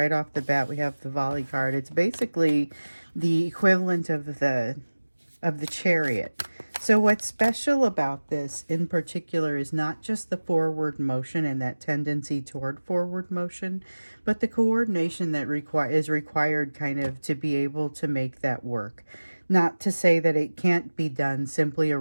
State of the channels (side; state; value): both; inverted; correlation -1.00